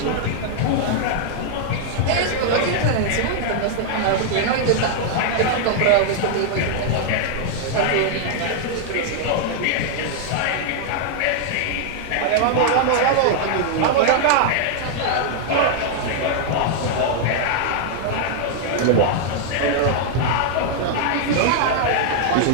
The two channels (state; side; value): different; both; correlation 0.00